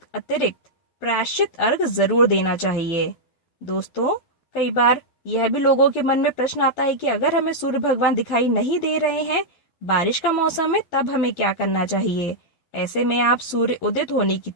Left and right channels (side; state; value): right; late; 12 ms